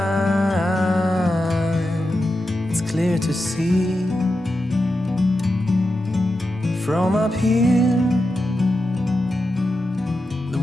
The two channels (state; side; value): normal; both; correlation 0.89